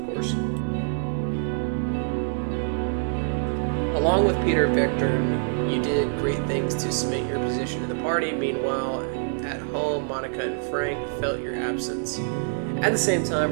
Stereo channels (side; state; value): left; silent; digital silence